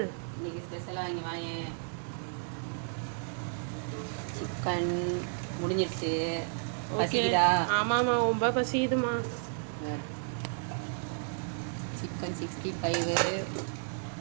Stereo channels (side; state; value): left; silent; digital silence